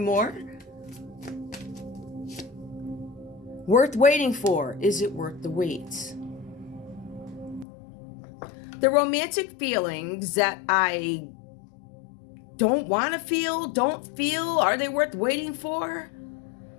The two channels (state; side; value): drops out; right; at 7.7 s